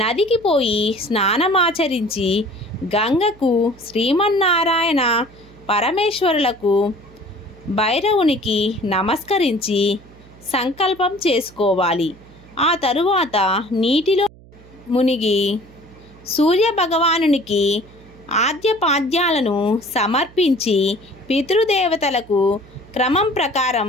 పోయి స్నానమాచరించి గంగకు, శ్రీమన్నారాయణ పరమేశ్వరులకు, భైరవునికి నమస్కరించి సంకల్పం చేసుకోవాలి. ఆ తరువాత నీటిలో మునిగి సూర్య భగవానునికి ఆద్యపాద్యాలను సమర్పించి పితృదేవతలకు క్రమం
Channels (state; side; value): noise; right; hum, 23 dB below the sound